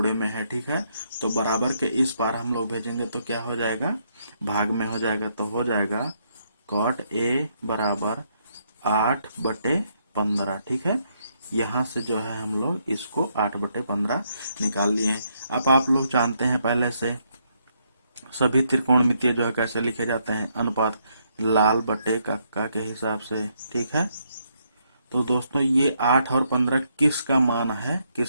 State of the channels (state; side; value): inverted; both; correlation -0.75